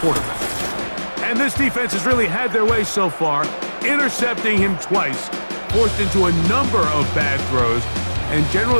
quarterback. And this defense has really had their way so far, intercepting him twice, forced into a number of bad throws, and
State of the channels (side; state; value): both; inverted; correlation -1.00